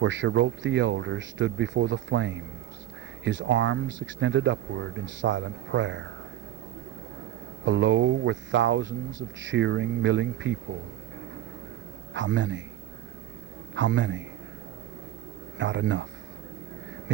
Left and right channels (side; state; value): left; quieter; 12.7 dB